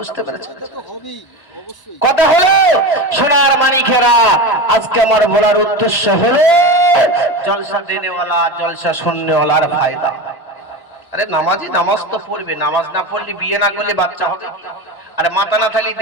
পেরেছেন? কথা হলো সোনার মানিকেরা, আজকে আমার বলার উদ্দেশ্য হলো জলসা দেনেওয়ালা জলসা শুননেওয়ালার ফায়দা। আরে নামাজি নামাজ তো পড়বে, নামাজ না পড়লে বিয়ে না করলে বাচ্চা হবে। আরে মাথা না থাকলে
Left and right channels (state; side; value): late; right; 1.0 ms